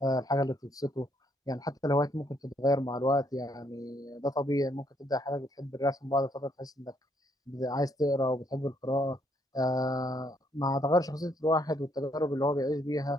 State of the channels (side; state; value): both; normal; correlation 0.70